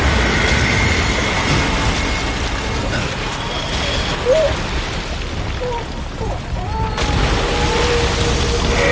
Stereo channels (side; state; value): both; identical; correlation 1.00